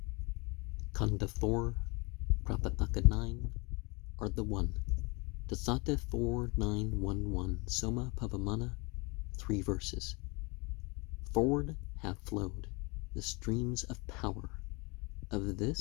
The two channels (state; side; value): quieter; right; 28.3 dB